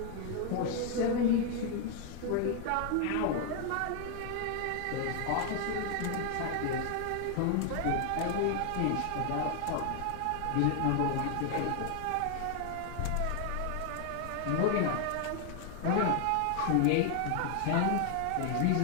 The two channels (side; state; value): both; different; correlation 0.00